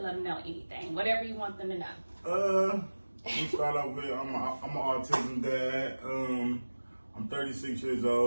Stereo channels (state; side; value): inverted; both; correlation -1.00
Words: let them know anything, whatever you want them to know. We start off with I'm an autism dad. I'm 36 years